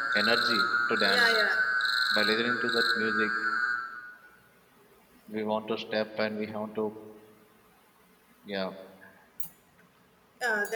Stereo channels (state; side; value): identical; both; correlation 1.00